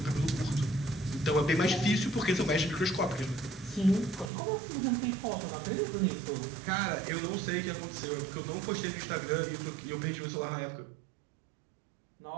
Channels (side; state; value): left; drops out; at 4.3 s